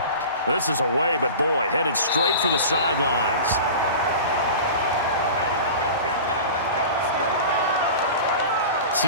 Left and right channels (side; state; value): both; inverted; correlation -0.35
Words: This is away, but boy, headed straight for the sidelines.